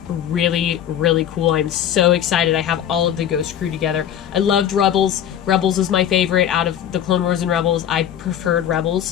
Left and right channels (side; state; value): right; quieter; 10.0 dB